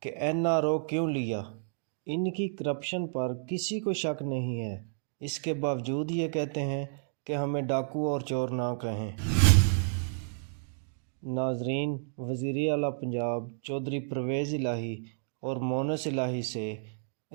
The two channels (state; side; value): silent; left; digital silence